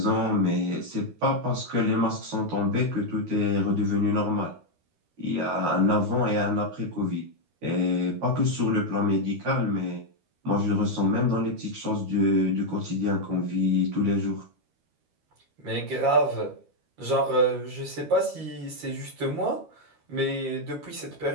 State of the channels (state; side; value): late; left; 12 ms